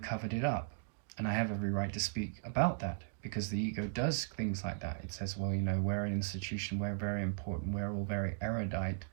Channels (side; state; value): left; silent; digital silence